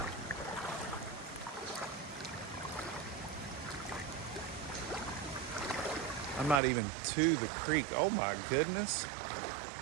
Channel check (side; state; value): left; drops out; at 6.6 s